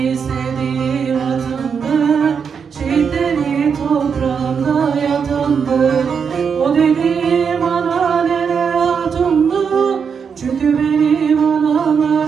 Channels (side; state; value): left; quieter; 6.5 dB